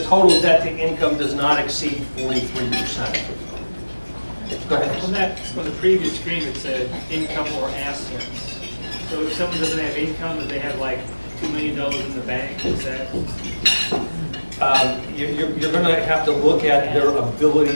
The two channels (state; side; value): inverted; both; correlation -1.00